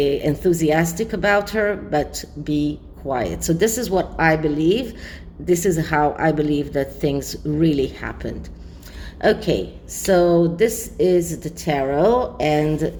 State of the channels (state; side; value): identical; both; correlation 1.00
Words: about her, but be quiet. So this is what I believe. This is how I believe that things really happened. Okay, so this is the tarot, and